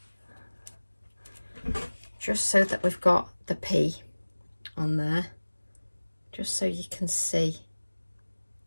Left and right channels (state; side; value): inverted; both; correlation -1.00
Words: Just so that we've got the P on there. Just so you can see.